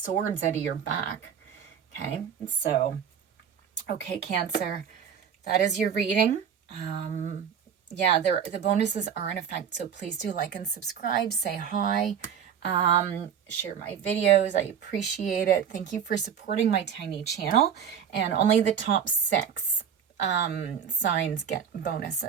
out of your back. Okay, so okay, Cancer, that is your reading. Yeah, the bonuses are in effect, so please do like and subscribe, say hi, share my videos. I appreciate it. Thank you for supporting my tiny channel, and only the top 6 signs get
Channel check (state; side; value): quieter; left; 7.9 dB